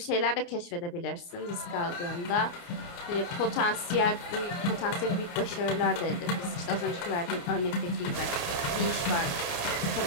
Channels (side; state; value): right; late; 28 ms